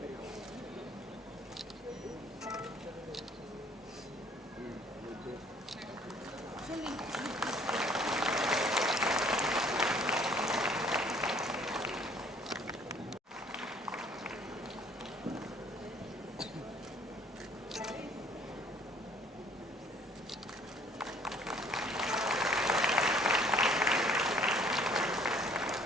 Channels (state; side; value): normal; both; correlation 0.59